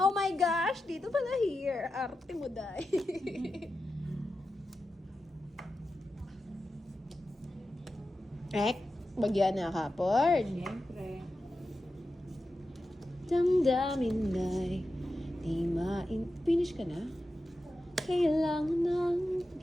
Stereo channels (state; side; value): normal; both; correlation 0.91